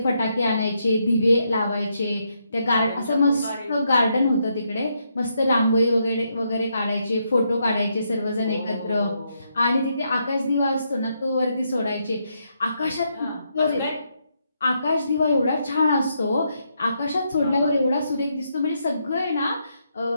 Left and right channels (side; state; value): both; inverted; correlation -0.79